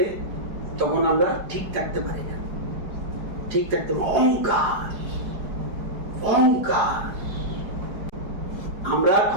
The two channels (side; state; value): left; late; 4.9 ms